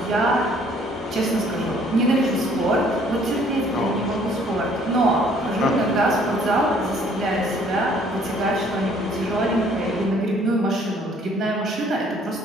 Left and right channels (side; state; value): both; normal; correlation 0.60